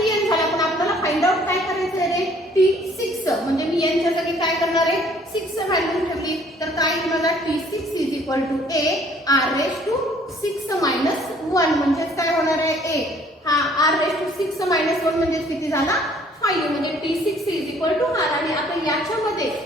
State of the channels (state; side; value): normal; both; correlation 0.59